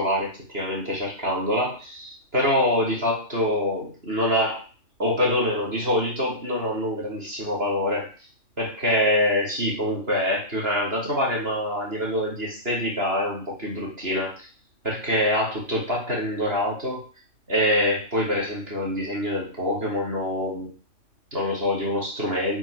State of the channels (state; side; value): late; left; 2.9 ms